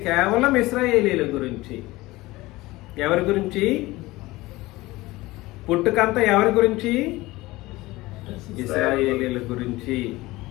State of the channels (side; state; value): right; quieter; 19.7 dB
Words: కేవలం ఇశ్రాయేలీల గురించి. ఎవరి గురించి పుట్టుకంతా? ఎవరి గురించి? ఇశ్రాయేలీల గురించి.